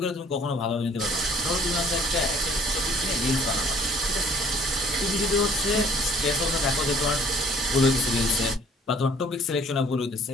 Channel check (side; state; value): both; normal; correlation 0.56